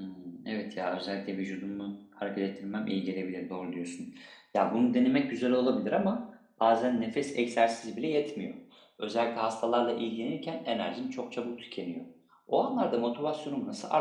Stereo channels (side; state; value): both; identical; correlation 1.00